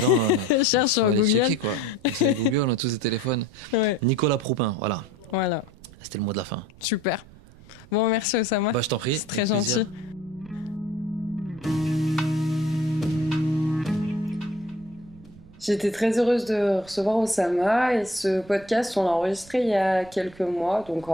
Cherche sur Google. Checker, quoi. C'est Google, on a tous des téléphones. Ouais. Nicolas Proupin, voilà. C'était le mot de la fin. Super. Bon, merci Oussama. Je t'en prie. C'est très gentil. J'étais très heureuse de recevoir Oussama et ce podcast, on l'a enregistré il y a quelques mois, donc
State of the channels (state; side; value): noise; right; rumble, 22 dB below the sound